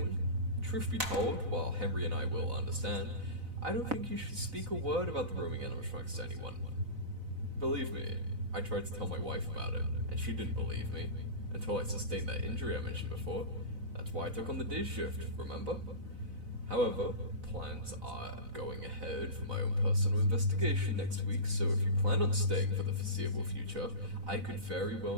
Truth be told, while Henry and I will understand, I don't think you should speak a word about the roaming animatronics to anyone. Believe me, I tried to tell my wife about it, and she didn't believe me, until I sustained that injury I mentioned before. That's why I took on the day shift, remember? However, plans are going ahead for my own personal investigation next week, so if you plan on staying for the foreseeable future, I could very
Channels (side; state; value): left; late; 4.0 ms